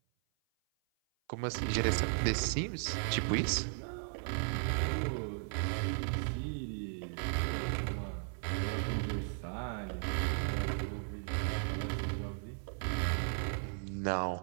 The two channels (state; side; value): silent; left; 54 dB below the other